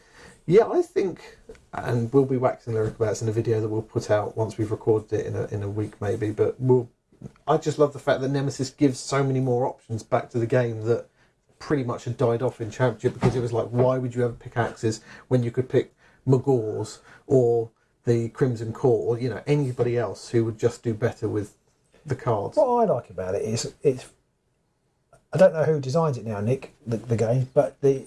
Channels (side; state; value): both; identical; correlation 1.00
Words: Yeah, I think, and we'll be waxing lyric about this in a video that we'll put out once we've recorded it in a week maybe. But I just love the fact that Nemesis gives so many more options back to the game that pretty much had died off in Championship, because it was like, why would you ever pick Axes when you could pick Magors or the Crimson Court, or anybody else who would just do better with the cards. What I like about it is I don't know who designs it now, Nick, the game, but